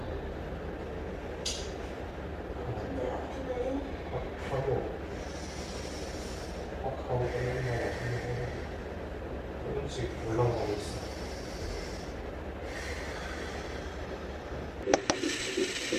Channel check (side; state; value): both; identical; correlation 1.00